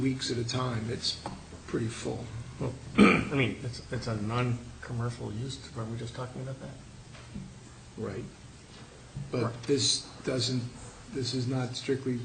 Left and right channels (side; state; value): both; identical; correlation 1.00